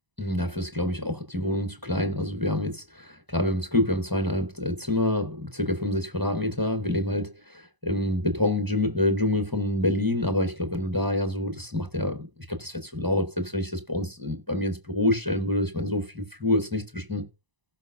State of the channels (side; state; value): left; late; 1.0 ms